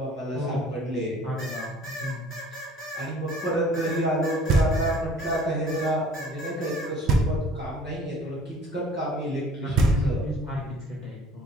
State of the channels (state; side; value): normal; both; correlation 0.52